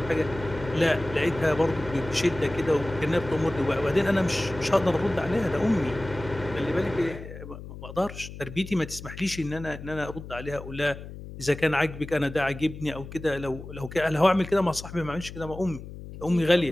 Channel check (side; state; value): left; noise; hum, 12 dB below the sound